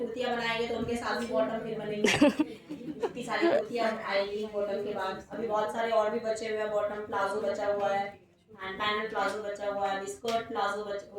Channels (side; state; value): both; identical; correlation 1.00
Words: बनाएंगे तो उनके साथ भी बॉटम फिर बनेंगे। इतनी सारी कुर्तियाँ आएंगी बॉटम के बाद। अभी बहुत सारे और भी बचे हुए हैं, बॉटम प्लाजो बचा हुआ है, एंड पैनल प्लाजो बचा हुआ है, स्कर्ट प्लाजो